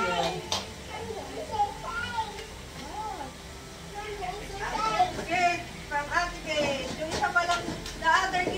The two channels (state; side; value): identical; both; correlation 1.00